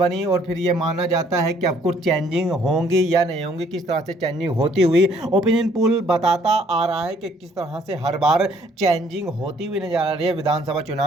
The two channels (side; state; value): both; normal; correlation 0.63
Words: और फिर ये माना जाता है कि अब कुछ चेंजिंग होंगी या नहीं होंगी। किस तरह से चेंजिंग होती हुई ओपिनियन पोल बताता आ रहा है कि किस तरह से हर बार चेंजिंग होती हुई नजर आ रही है विधानसभा